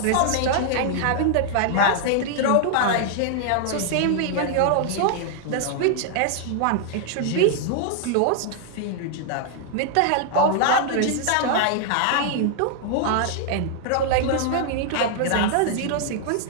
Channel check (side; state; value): both; different; correlation -0.01